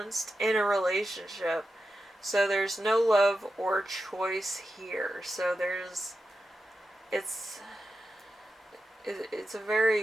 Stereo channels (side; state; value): both; normal; correlation 0.90